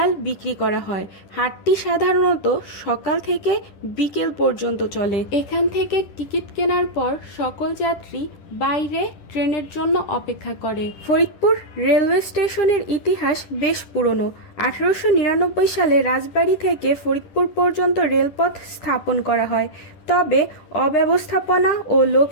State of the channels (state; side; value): late; right; 10 ms